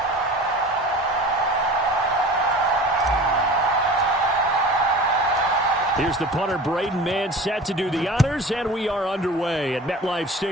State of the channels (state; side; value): normal; both; correlation 0.39